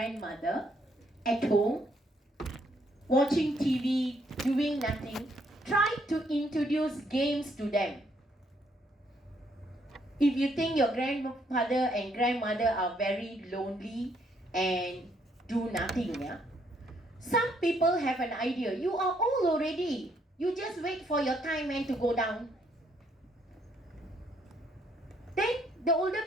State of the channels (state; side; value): normal; both; correlation 0.71